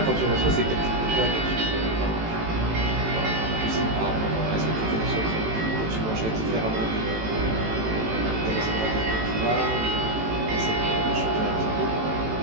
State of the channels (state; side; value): late; left; 18 ms